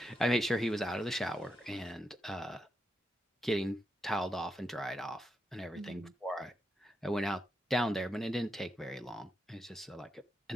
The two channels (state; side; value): normal; both; correlation 0.84